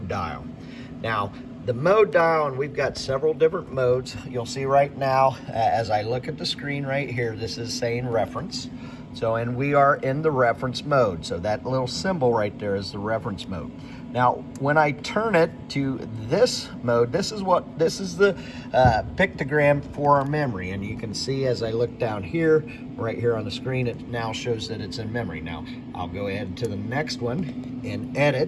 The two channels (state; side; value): identical; both; correlation 1.00